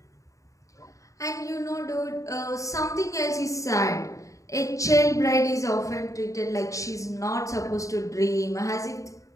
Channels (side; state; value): right; late; 0.16 ms